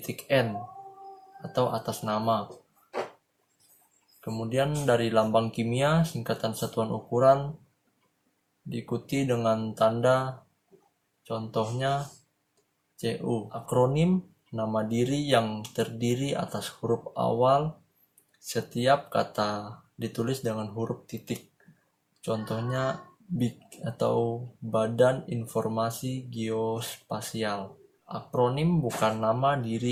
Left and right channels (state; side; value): identical; both; correlation 1.00